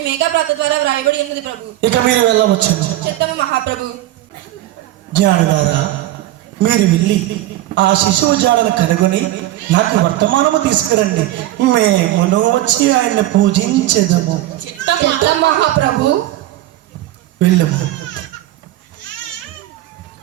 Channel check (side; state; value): left; quieter; 15.0 dB